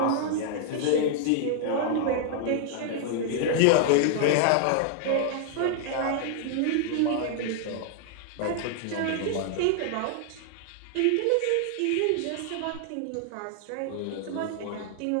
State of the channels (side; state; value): both; different; correlation -0.01